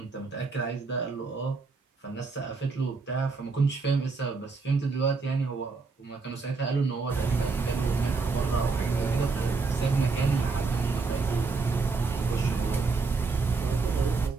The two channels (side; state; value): left; quieter; 4.3 dB